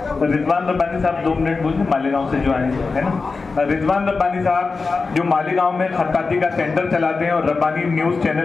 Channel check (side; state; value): right; quieter; 4.3 dB